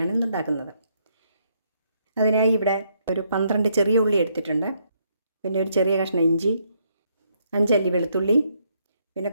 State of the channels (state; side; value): inverted; both; correlation -0.73